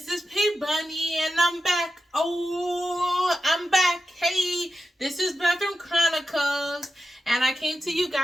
is P Bunny, and I'm back. Oh, I'm back. Hey, this is Bathroom Chronicles, and I came to you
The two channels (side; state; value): both; normal; correlation 0.91